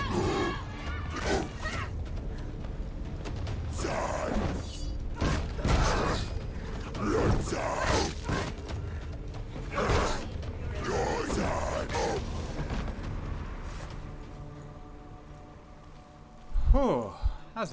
Whew, that was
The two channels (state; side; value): identical; both; correlation 1.00